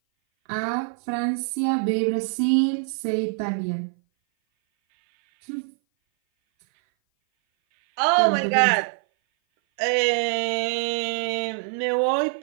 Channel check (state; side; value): silent; left; 58 dB below the other